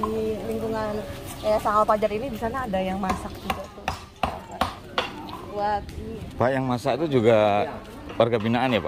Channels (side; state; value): both; identical; correlation 1.00